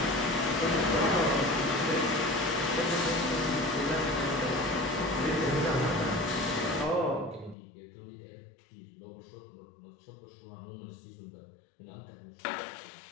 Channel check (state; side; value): drops out; right; at 7.6 s